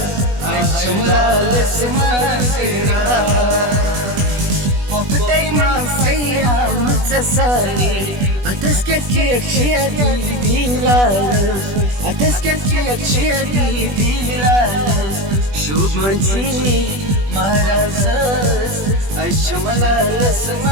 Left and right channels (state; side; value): late; left; 20 ms